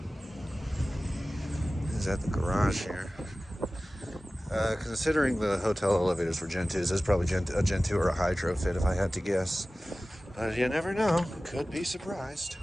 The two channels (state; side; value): normal; both; correlation 0.96